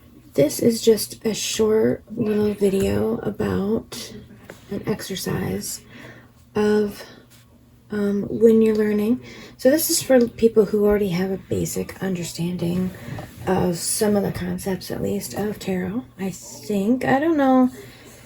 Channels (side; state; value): both; identical; correlation 1.00